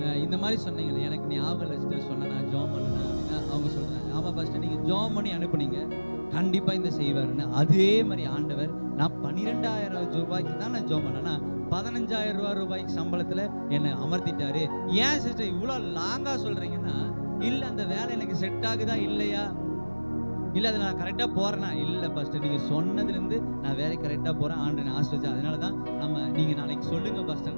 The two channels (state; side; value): inverted; both; correlation -1.00